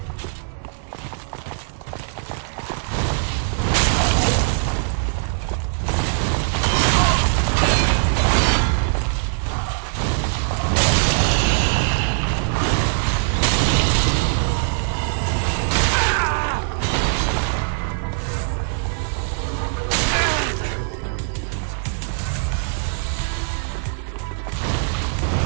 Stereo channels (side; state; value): left; silent; digital silence